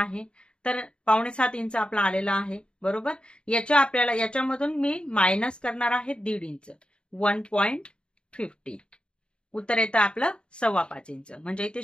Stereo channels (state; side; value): late; right; 0.053 ms